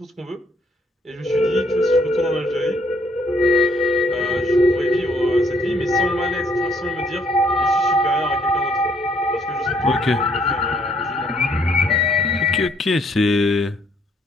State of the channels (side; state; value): both; normal; correlation 0.67